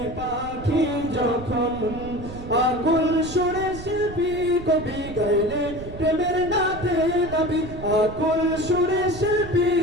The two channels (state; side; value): noise; right; rumble, 12 dB below the sound